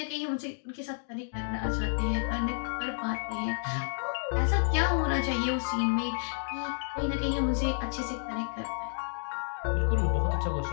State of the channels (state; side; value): silent; right; digital silence